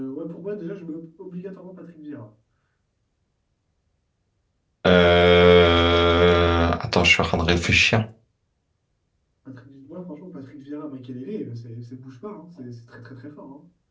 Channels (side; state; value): both; identical; correlation 1.00